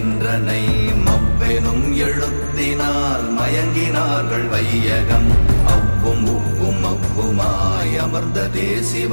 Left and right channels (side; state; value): both; inverted; correlation -1.00